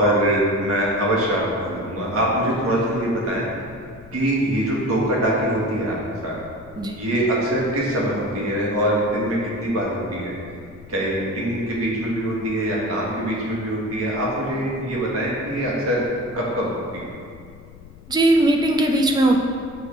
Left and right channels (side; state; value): left; noise; rumble, 20 dB below the sound